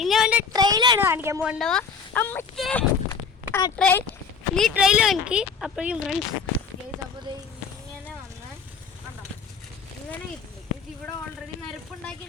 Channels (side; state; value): right; quieter; 5.8 dB